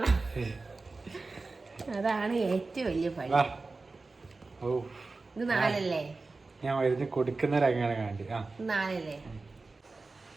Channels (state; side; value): quieter; left; 3.7 dB